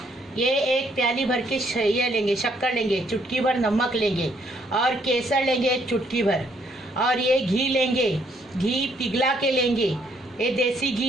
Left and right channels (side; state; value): both; normal; correlation 0.69